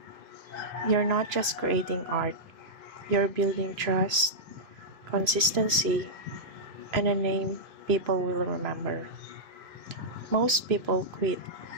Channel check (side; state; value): left; late; 2.5 ms